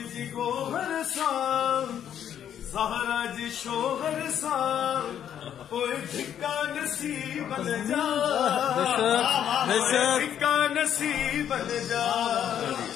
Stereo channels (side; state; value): right; quieter; 9.7 dB